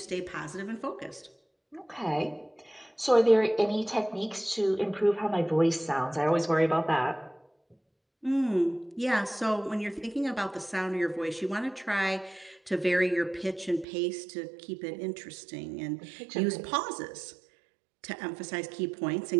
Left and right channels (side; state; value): left; drops out; at 13.9 s